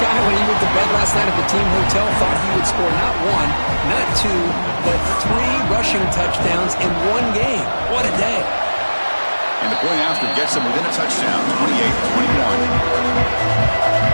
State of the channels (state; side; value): inverted; both; correlation -1.00